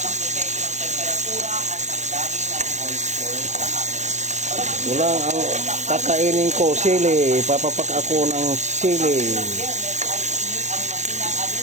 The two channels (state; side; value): late; left; 0.34 ms